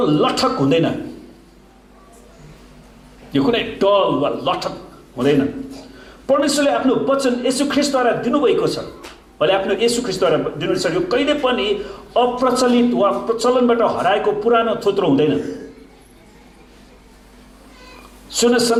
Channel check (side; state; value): both; identical; correlation 1.00